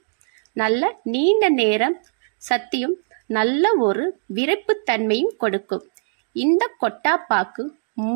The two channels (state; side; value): silent; left; digital silence